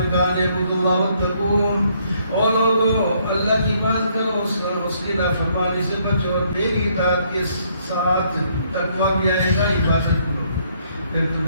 کہا اعبدوا اللہ واتقون، اور لوگوں اللہ کی عبادت کرو، اس کی نافرمانی سے بچو، اور میری اطاعت کے ساتھ تقویٰ بھی آئے گا. عبادت کرو پھر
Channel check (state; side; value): inverted; both; correlation -0.69